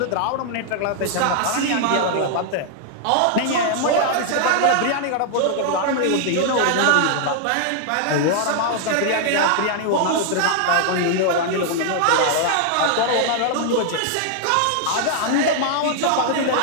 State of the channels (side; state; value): both; different; correlation 0.00